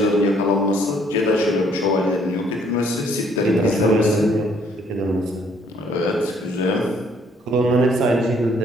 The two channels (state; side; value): normal; both; correlation 0.64